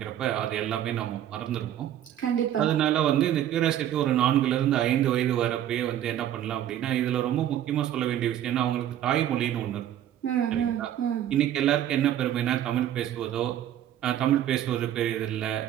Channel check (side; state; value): left; quieter; 11.3 dB